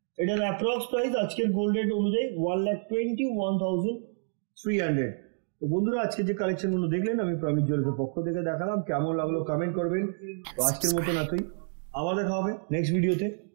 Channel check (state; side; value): silent; left; digital silence